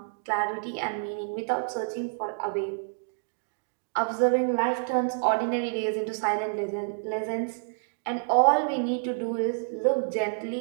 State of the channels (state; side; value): silent; left; digital silence